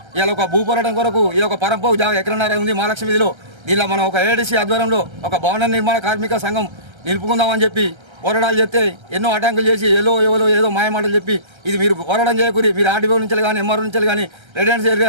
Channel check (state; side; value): late; left; 1.3 ms